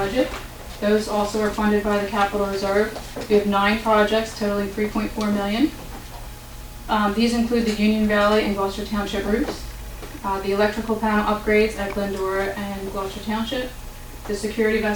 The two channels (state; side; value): identical; both; correlation 1.00